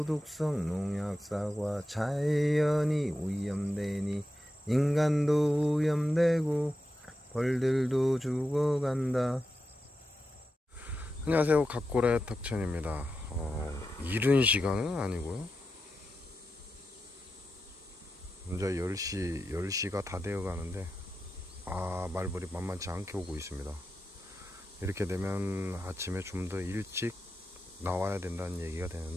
농약사과, 자연이 오염되니 인간도 오염되고 벌들도 죽어간다. 안녕하세요, 각고래 탁천입니다. 이른 시간은 아니고요, 이제 10시가 다 되어 가는데 말벌이 만만치 않게 오고 있습니다. 이렇게 되면 아침에 좀 더 일찍 나와야 된다는 얘기가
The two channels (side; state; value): both; normal; correlation 0.89